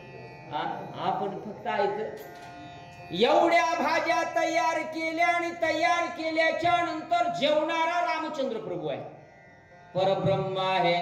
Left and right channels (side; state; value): both; identical; correlation 1.00